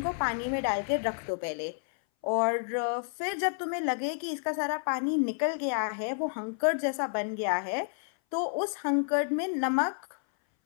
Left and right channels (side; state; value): right; silent; 58 dB below the other